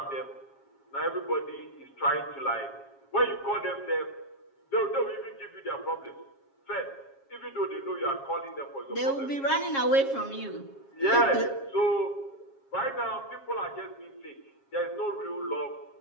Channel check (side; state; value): right; late; 7.3 ms